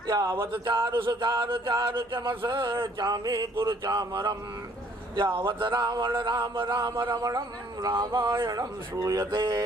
यावत चारु सुचारु चारु चमस चामी कुरु चामरम यावत रावण राम राम रमणं रामायणं श्रूयते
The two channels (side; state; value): both; normal; correlation 0.61